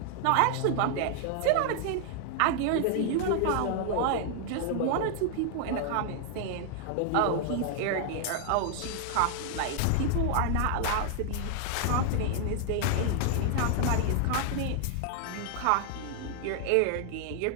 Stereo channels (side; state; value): both; different; correlation 0.00